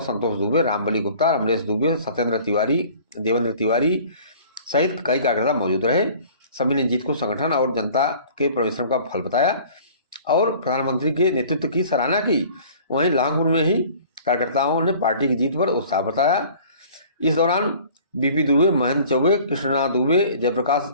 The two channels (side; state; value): both; inverted; correlation -0.49